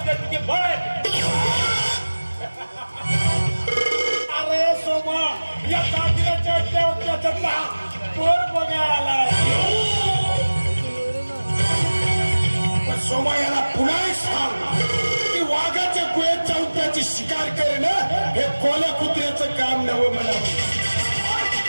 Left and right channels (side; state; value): both; inverted; correlation -1.00